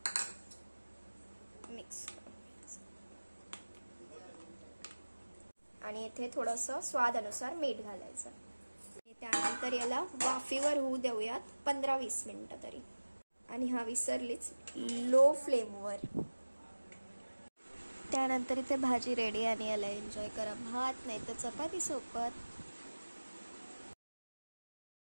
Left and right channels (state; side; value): inverted; both; correlation -1.00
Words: मिक्स करून घ्यायचं, आणि इथे थोडंसं स्वादानुसार मीठ घालायचं। त्यानंतर याला वाफेवर होऊ देऊयात 15-20 मिनिटं तरी, आणि हा विसरलीच, लो फ्लेमवर। त्यानंतर इथे भाजी रेडी, आणि याला एन्जॉय करा भात नाही तर चपाती सोबत।